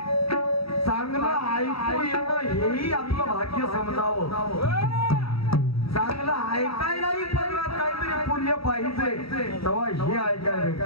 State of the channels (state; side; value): late; right; 0.76 ms